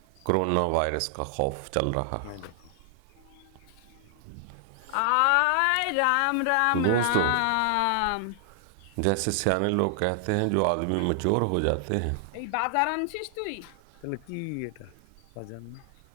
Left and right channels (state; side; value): different; both; correlation 0.00